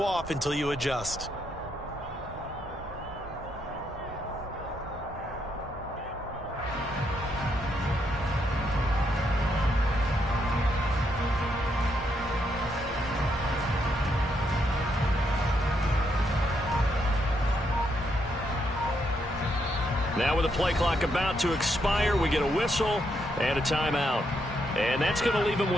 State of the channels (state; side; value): normal; both; correlation 0.77